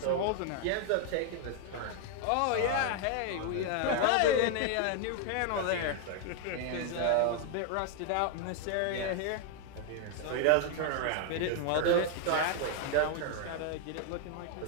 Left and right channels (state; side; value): different; both; correlation 0.00